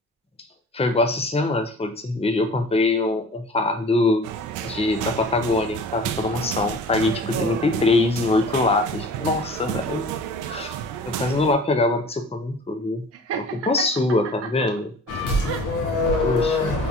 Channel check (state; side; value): normal; both; correlation 0.43